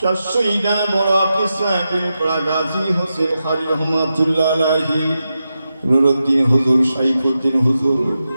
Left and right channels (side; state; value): both; inverted; correlation -0.89